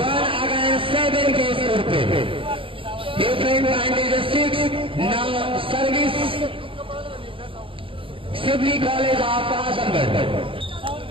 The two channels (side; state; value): left; late; 0.26 ms